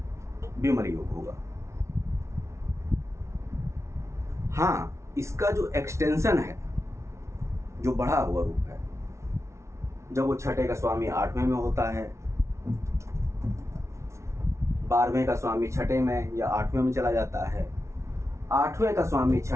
विमल योग होगा। हाँ, इसका जो एक्सटेंशन है, जो बढ़ा हुआ रूप है, जब वो छठे का स्वामी 8वें में होता है, 12वें का स्वामी छठे में या 8वें में चला जाता है, 8वें का स्वामी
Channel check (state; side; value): late; left; 0.13 ms